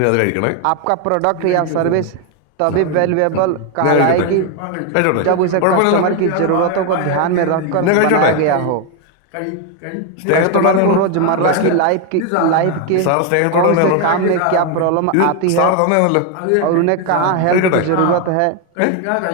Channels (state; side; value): different; both; correlation 0.01